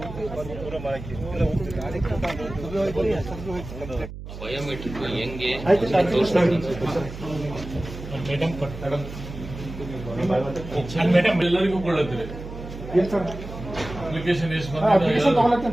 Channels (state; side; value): noise; right; hum, 11 dB below the sound